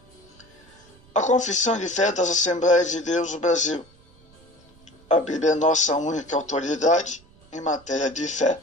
A Confissão de Fé das Assembleias de Deus do Brasil. A Bíblia é nossa única autoridade em matéria de fé,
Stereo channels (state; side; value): noise; right; rumble, 28 dB below the sound